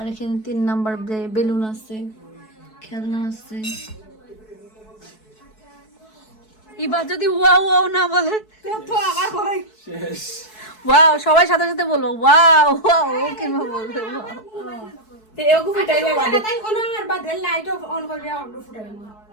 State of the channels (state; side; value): late; right; 4.6 ms